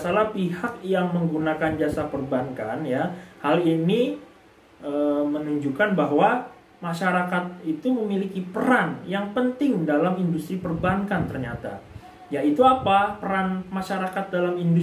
pihak yang menggunakan jasa perbankan ya, hal ini menunjukkan bahwa masyarakat itu memiliki peran yang penting dalam industri perbankan ternyata. Yaitu apa? Peran masyarakat dalam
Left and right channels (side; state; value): both; identical; correlation 1.00